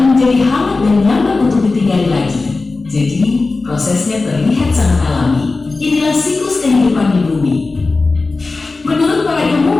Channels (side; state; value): right; quieter; 3.7 dB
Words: menjadi hangat dan nyaman untuk ditinggali lagi. Jadi, prosesnya terlihat sangat alami. Inilah siklus kehidupan di bumi. Menurut para